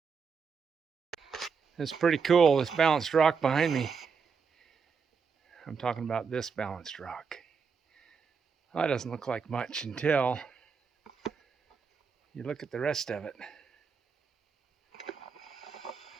It's pretty cool, this balanced rock behind me. I'm talking about this balanced rock. Well, that doesn't look like much until you look at the rest of it.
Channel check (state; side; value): quieter; left; 5.8 dB